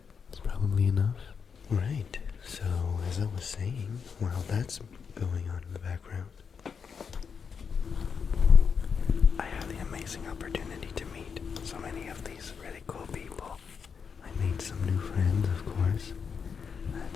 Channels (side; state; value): right; quieter; 6.2 dB